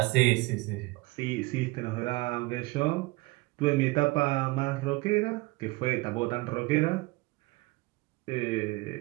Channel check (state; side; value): quieter; left; 22.8 dB